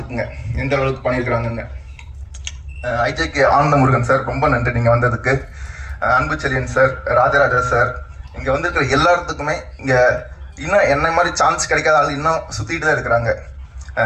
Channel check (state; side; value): identical; both; correlation 1.00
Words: எந்த அளவுக்கு பண்ணியிருக்கிறாங்கன்னு. ஐஜேகே ஆனந்த முருகன் சார் ரொம்ப நன்றி நீங்க வந்ததுக்கு. அன்பு செல்லியன் சார், ராஜராஜா சார், இங்க வந்திருக்கிற எல்லாத்துக்குமே இங்க இன்னும் என்ன மாதிரி சான்ஸ் கிடைக்காத ஆள் இன்னும் சுத்திட்டு தான் இருக்கிறாங்க.